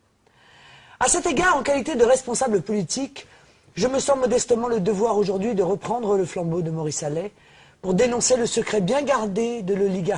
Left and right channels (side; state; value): both; identical; correlation 1.00